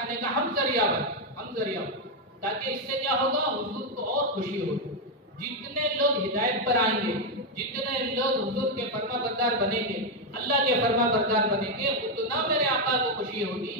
کا ہم ذریعہ بن، تاکہ اس سے کیا ہوگا؟ حضور کو اور خوشی ہوگی۔ جتنے لوگ ہدایت پر آئیں گے، جتنے لوگ حضور کے فرما بردار بنیں گے، اللہ کے فرما بردار بنیں گے، اتنا میرے آقا کو خوشی ہوگی۔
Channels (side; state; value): both; normal; correlation 0.04